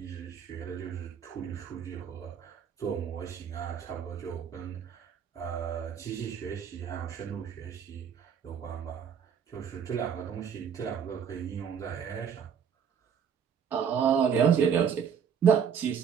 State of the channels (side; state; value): left; quieter; 7.5 dB